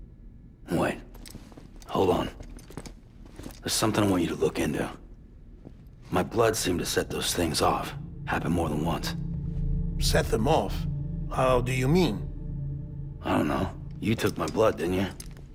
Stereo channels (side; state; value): both; identical; correlation 1.00